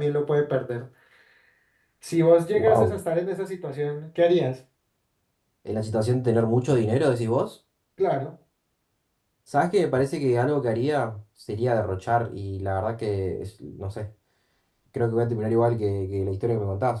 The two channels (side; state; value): both; identical; correlation 1.00